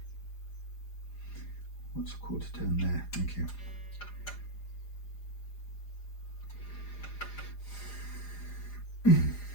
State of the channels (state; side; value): late; right; 4.9 ms